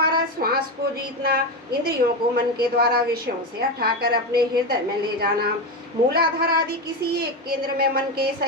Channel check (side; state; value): both; normal; correlation 0.15